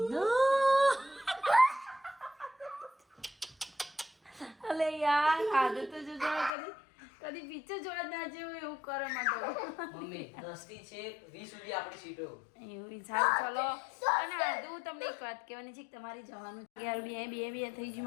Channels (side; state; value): right; drops out; at 6.5 s